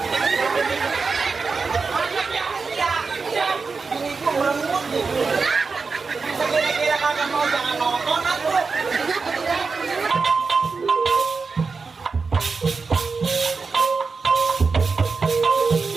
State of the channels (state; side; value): quieter; left; 4.6 dB